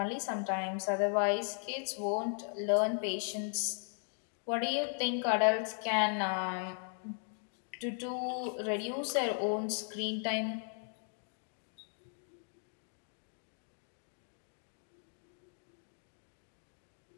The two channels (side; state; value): right; silent; 53 dB below the other